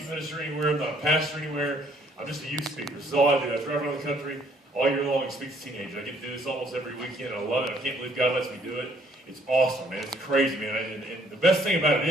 minister anywhere. I'm not a pastor anywhere. I'm just a youth speaker. This is all I do. I drive around the country all year long and speak to teenagers. I get to do this almost every weekend. I love it. I can't believe God lets me do it. It's awesome, man. It's crazy, man. And the best thing about it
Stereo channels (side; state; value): both; normal; correlation 0.64